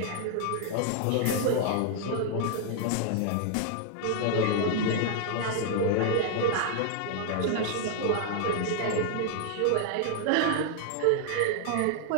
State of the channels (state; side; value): different; both; correlation 0.00